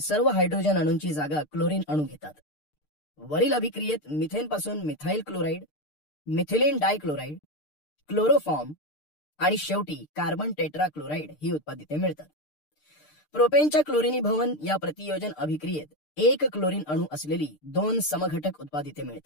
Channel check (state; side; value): late; right; 6.7 ms